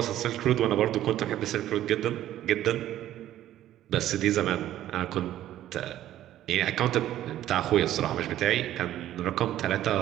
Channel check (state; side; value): quieter; left; 12.8 dB